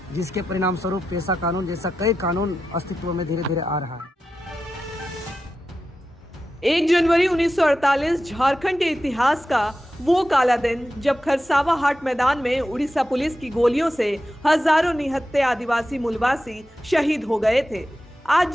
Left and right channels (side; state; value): both; normal; correlation 0.91